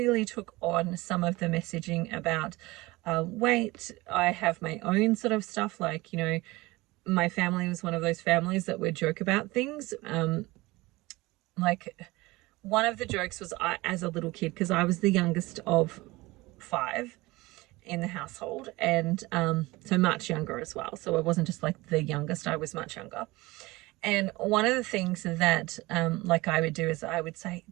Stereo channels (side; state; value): left; quieter; 21.1 dB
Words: took on some of the messaging about weight. I have my own sort of stuff, like, my family was one of those families that would joke about things. Like one of the jokes was as a little kid, because I was the youngest of 5 in the household, and so much younger as well. So I wasn't just like the youngest, I was much younger. And one of the things that like I would do is I would say,